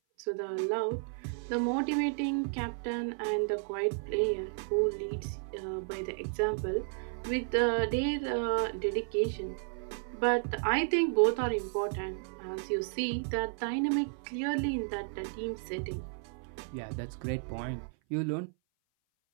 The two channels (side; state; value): left; silent; 56 dB below the other